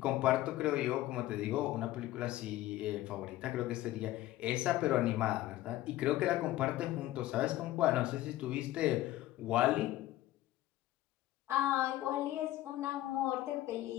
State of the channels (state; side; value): quieter; right; 15.4 dB